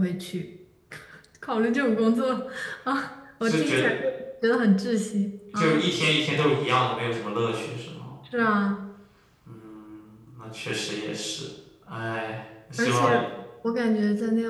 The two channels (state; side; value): identical; both; correlation 1.00